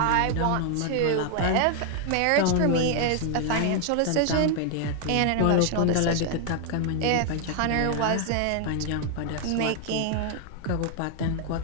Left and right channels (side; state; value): both; different; correlation 0.00